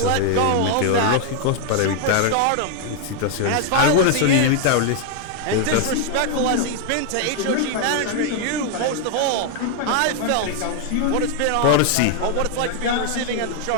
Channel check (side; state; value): both; different; correlation 0.00